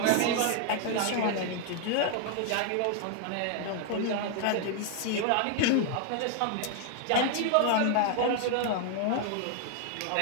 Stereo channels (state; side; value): different; both; correlation 0.00